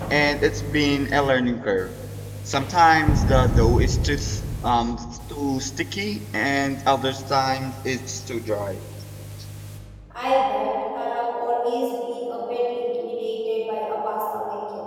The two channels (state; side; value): identical; both; correlation 1.00